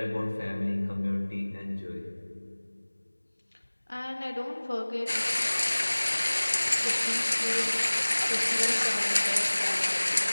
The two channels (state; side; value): inverted; both; correlation -1.00